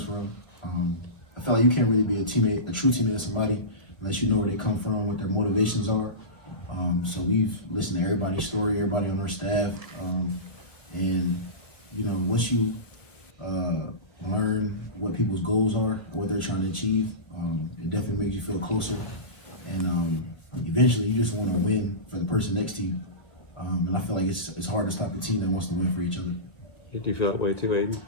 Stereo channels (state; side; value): late; right; 1.2 ms